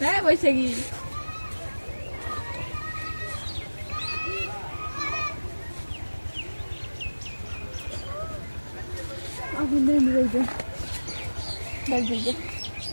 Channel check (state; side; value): inverted; both; correlation -1.00